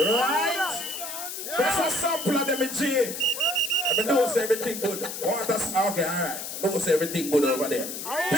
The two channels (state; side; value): noise; left; hiss, 7 dB below the sound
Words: That's a sample of them in G. I mean, knows everything good. Okay, alright. Knows everything good over there.